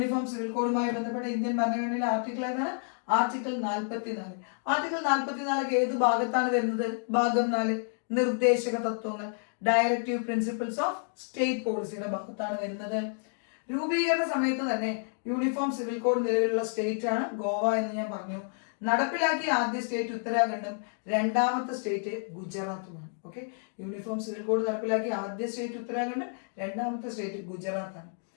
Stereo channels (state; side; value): silent; right; 58 dB below the other